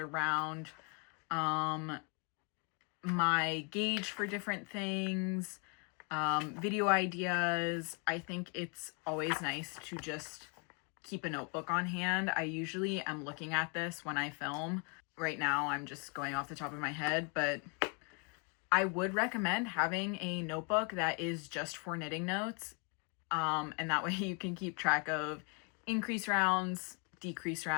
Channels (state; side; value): quieter; right; 36.0 dB